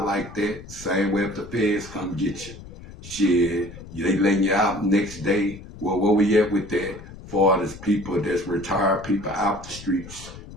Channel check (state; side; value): noise; left; rumble, 15 dB below the sound